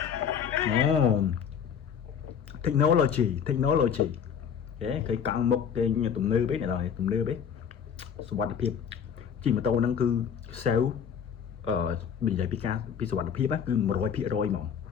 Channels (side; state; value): right; quieter; 7.7 dB